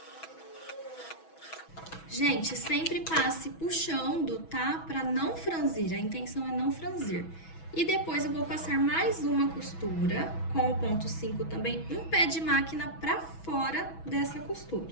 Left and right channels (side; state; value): right; late; 6.1 ms